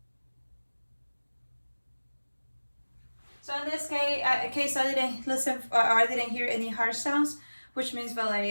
So in this case, I didn't listen or I didn't hear any harsh sounds, which means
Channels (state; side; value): inverted; both; correlation -1.00